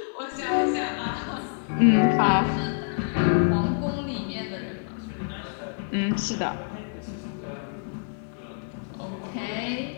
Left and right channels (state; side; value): silent; right; digital silence